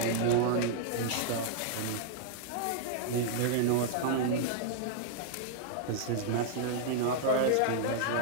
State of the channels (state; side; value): different; both; correlation -0.01